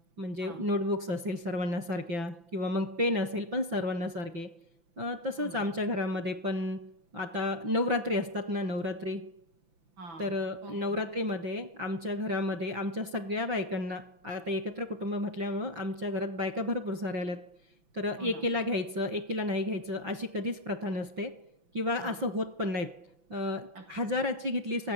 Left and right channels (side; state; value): left; late; 5.9 ms